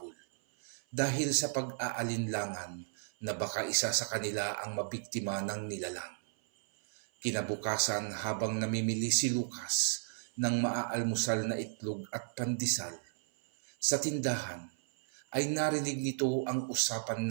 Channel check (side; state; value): left; silent; 55 dB below the other